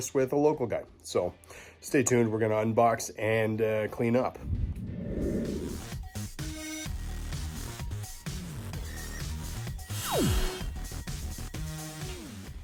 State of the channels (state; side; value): identical; both; correlation 1.00